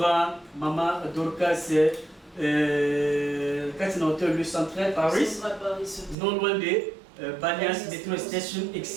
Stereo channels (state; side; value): drops out; left; at 6.2 s